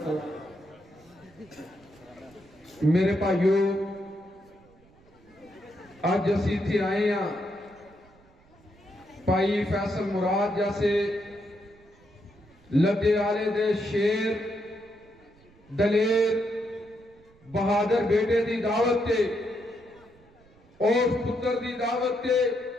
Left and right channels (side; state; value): right; noise; rumble, 28 dB below the sound